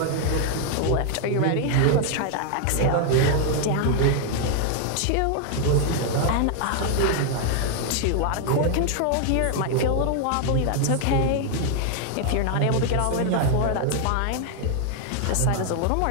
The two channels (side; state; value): both; different; correlation 0.00